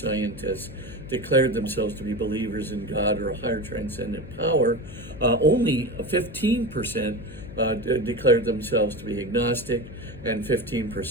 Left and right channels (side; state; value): left; noise; hum, 14 dB below the sound